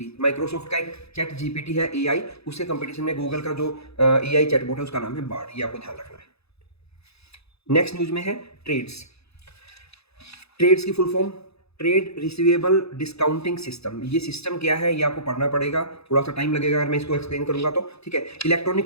माइक्रोसॉफ्ट का एक चैट जीपीटी है एआई, उसके कंपटीशन में गूगल का जो एआई चैटबॉट है उसका नाम है बार्ड। ये आपको ध्यान रखना है। नेक्स्ट न्यूज में है ट्रेड्स। ट्रेड्स की full form trade receivable discounting system. ये सिस्टम क्या है ये आपको पढ़ना पड़ेगा, थोड़ा सा टाइम लगेगा अगर मैं इसको एक्सप्लेन करूंगा तो। ठीक है,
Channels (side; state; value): right; late; 0.79 ms